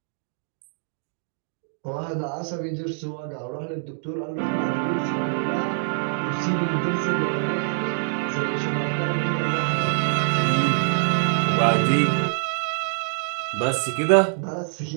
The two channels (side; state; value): left; silent; digital silence